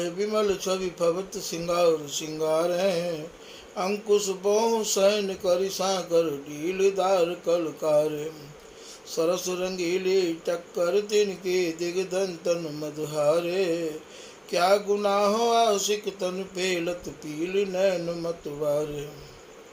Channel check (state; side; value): identical; both; correlation 1.00